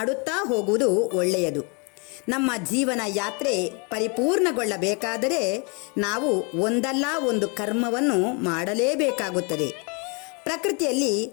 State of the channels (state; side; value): quieter; right; 33.4 dB